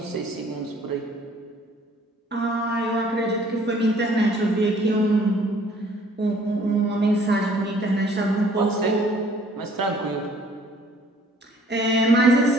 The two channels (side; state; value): both; normal; correlation 0.57